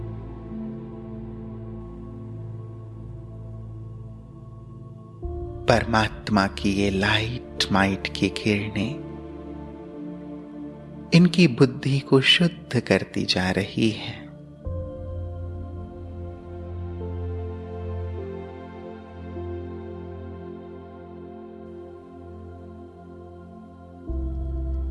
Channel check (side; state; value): both; identical; correlation 1.00